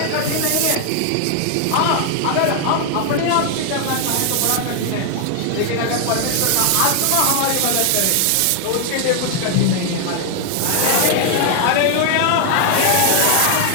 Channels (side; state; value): both; different; correlation 0.00